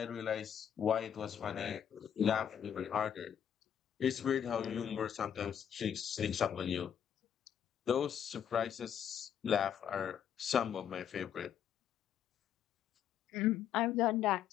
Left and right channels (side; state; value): right; quieter; 8.9 dB